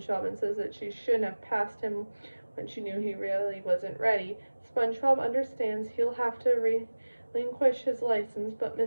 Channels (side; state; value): both; inverted; correlation -1.00